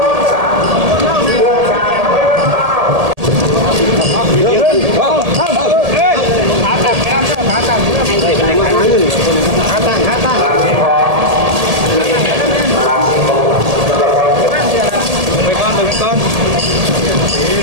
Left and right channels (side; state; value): left; late; 1.8 ms